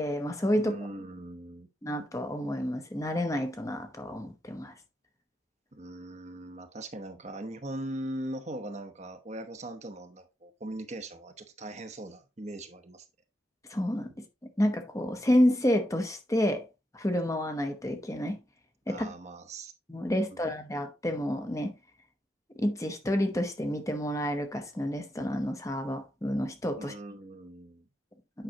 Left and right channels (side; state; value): both; normal; correlation 0.84